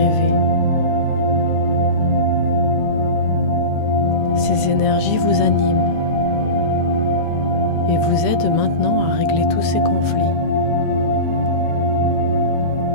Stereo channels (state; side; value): late; right; 13 ms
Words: Ces énergies vous animent et vous aident maintenant à régler tous ces conflits.